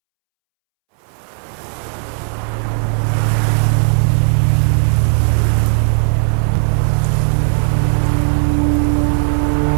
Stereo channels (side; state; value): left; silent; 70 dB below the other